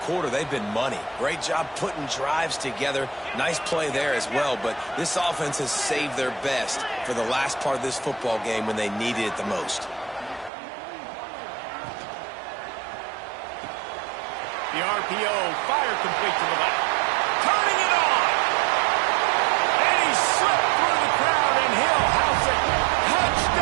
quarter, they've been money. Great job putting drives together. Nice play there as well, but this offense has saved their best for the last part of this football game when they needed it the most. The RPO, fire complete to the left. Turning it on! And he slipped through the crowd, and he'll house it.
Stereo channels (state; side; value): drops out; left; at 10.5 s